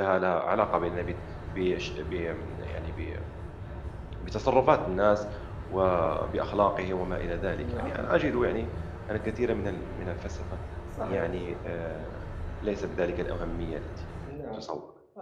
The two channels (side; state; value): both; identical; correlation 1.00